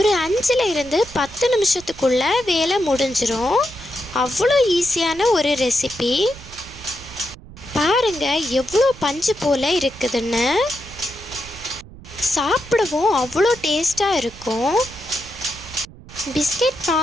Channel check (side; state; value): right; noise; rumble, 18 dB below the sound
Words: 5லிருந்து 10 நிமிஷத்துக்குள்ளே வேலை முடிஞ்சிரும். அவ்வளோ ஈஸியான ஒரு ரெசிபி. பாருங்க, எவ்வளோ பஞ்சு போல் இருக்குதுன்னு. சாப்பிடவும் அவ்வளோ டேஸ்ட்டாக இருக்கும். பிஸ்கெட்